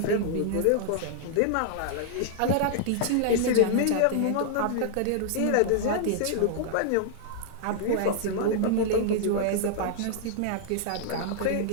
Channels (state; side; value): different; both; correlation -0.01